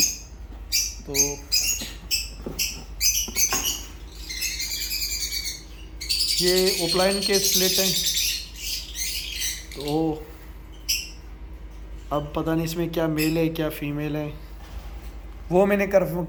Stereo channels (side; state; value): both; identical; correlation 1.00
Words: तो ये ओपलाइन के स्प्लिट हैं। तो अब पता नहीं इसमें क्या मेल है क्या फीमेल है, वो मैंने